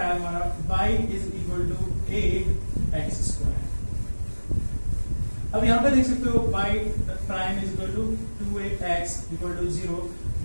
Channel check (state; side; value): inverted; both; correlation -1.00